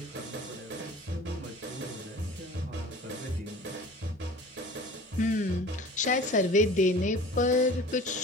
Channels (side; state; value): both; normal; correlation 0.42